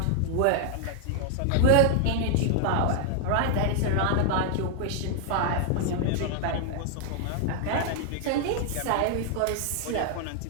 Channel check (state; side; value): different; both; correlation 0.00